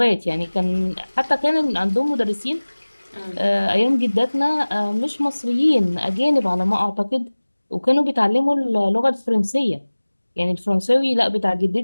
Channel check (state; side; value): inverted; both; correlation -1.00